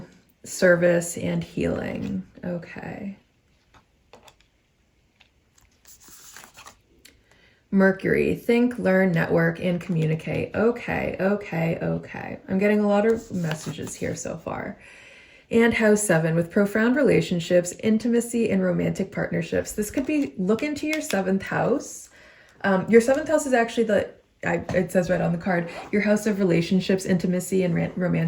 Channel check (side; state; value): both; identical; correlation 1.00